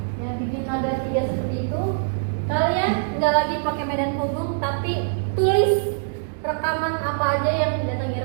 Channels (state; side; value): silent; left; 63 dB below the other